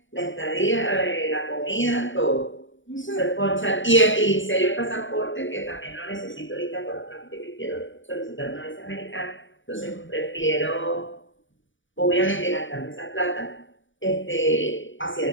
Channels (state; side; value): late; right; 0.56 ms